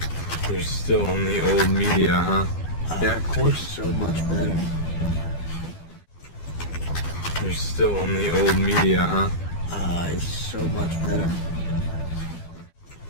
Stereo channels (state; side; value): late; right; 12 ms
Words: You're still on the old media, huh? Yeah, of course. So much better. You're still on the old media, huh? It's so much better.